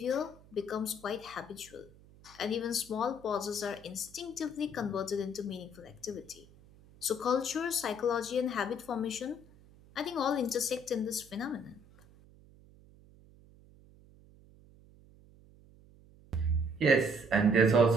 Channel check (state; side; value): noise; right; hum, 24 dB below the sound